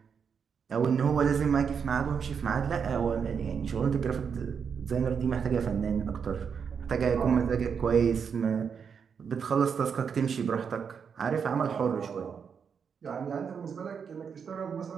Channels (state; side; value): quieter; left; 6.6 dB